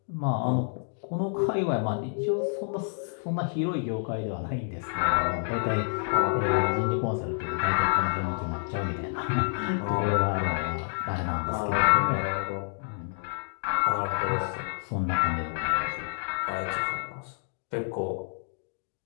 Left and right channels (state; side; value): silent; right; digital silence